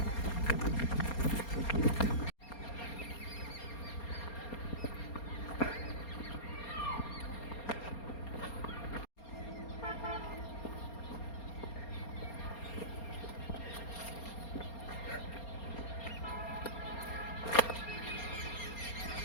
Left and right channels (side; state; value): right; late; 4.3 ms